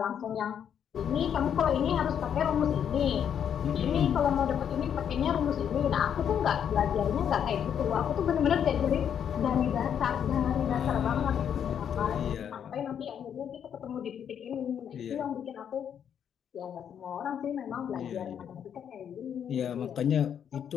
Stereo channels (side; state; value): right; quieter; 8.6 dB